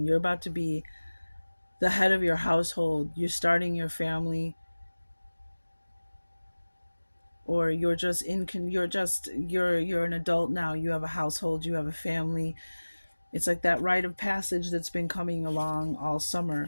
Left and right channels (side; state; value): both; inverted; correlation -1.00